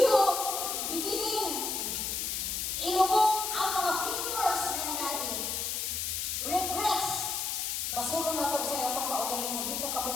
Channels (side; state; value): left; noise; hiss, 1 dB below the sound